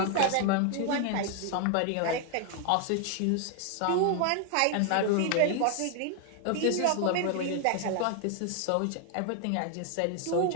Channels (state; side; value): different; both; correlation 0.00